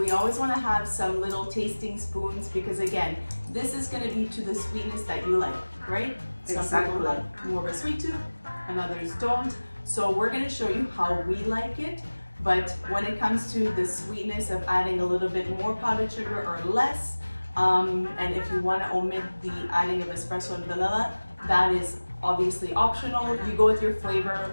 always want to have some little tasting spoons, because again, this is going to be to the sweetness that you like, right? Some people have more of a sweet tooth and others don't. So we're going to show you how we like it. But when it comes to the sweetness of adding a little bit more powdered sugar or less, and if you want to omit the adding of espresso and vanilla, that is obviously optional. You go with your flavor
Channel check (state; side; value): inverted; both; correlation -1.00